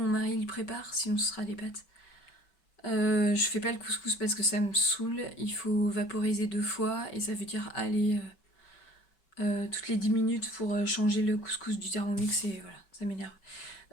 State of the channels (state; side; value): late; right; 5.2 ms